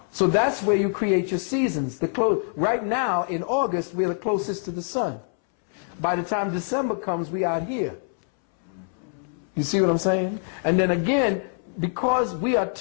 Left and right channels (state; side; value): silent; right; 62 dB below the other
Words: So that's where you create your seasons. Right now in August, we're the closest to the sun. By the time December comes, we are here. You see what I'm saying? And then again, because we are